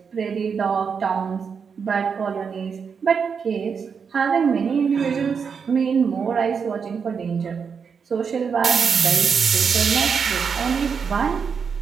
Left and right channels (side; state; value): left; quieter; 6.2 dB